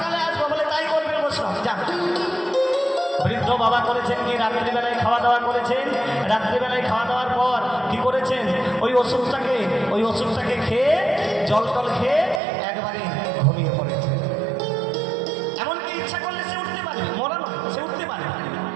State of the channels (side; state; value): left; drops out; at 12.4 s